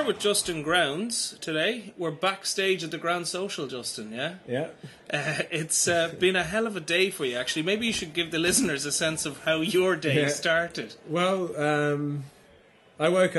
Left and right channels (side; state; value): both; identical; correlation 1.00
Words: with Justin Grounds today. We're backstage at the Grand Social, Justin, yeah? Yeah. It's been a hell of a day for you, actually. Maybe you should give the listeners a sense of how your day started. Well, I woke